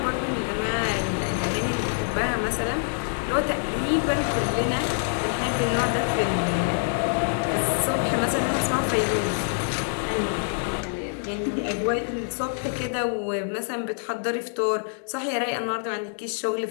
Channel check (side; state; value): right; silent; 61 dB below the other